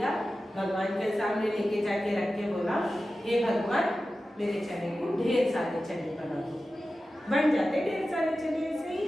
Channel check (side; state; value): both; normal; correlation 0.94